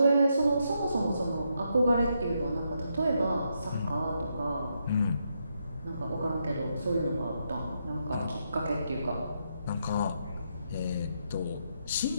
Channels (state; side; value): inverted; both; correlation -0.80